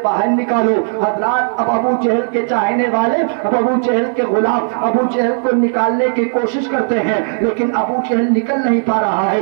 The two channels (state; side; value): silent; left; digital silence